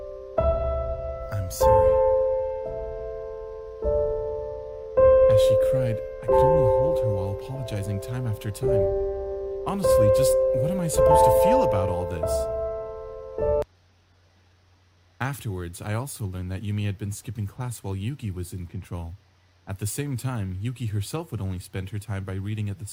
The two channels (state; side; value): identical; both; correlation 1.00